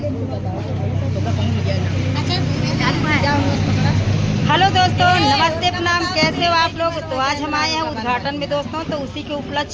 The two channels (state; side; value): identical; both; correlation 1.00